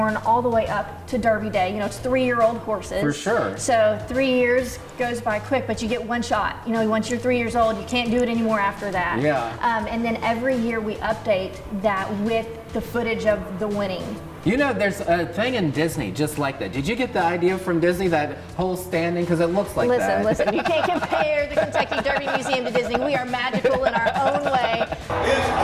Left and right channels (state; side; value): identical; both; correlation 1.00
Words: all the way up to Derby Day. You know, it's 3-year-old horses. For sure. So 3 years goes by quick, but you get one shot. You know, once you're 3 years old, you can't do it anymore after that. Yeah. And then every year we update that with the footage of the winning. You know, there's a thing in Disney just like that. Did you get the idea from Disney, that whole standing? Because it looks like that. Listen, you can't compare the Kentucky Derby Museum to Disney. We are magical in our own way. Is